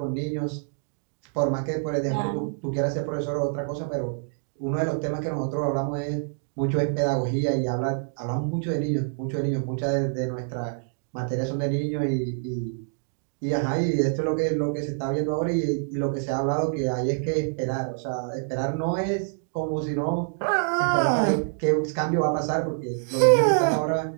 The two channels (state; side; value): silent; left; digital silence